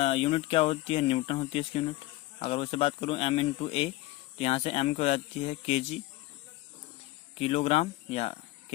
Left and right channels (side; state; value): right; quieter; 18.3 dB